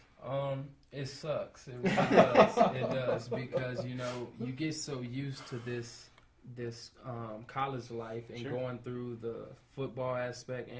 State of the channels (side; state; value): both; identical; correlation 1.00